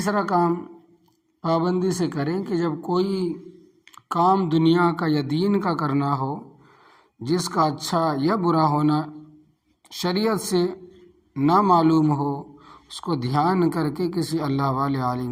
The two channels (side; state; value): both; identical; correlation 1.00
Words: کام پابندی سے کریں کہ جب کوئی کام دنیا کا یا دین کا کرنا ہو جس کا اچھا یا برا ہونا شریعت سے نہ معلوم ہو، اس کو دھیان کر کے کسی اللہ والے عالم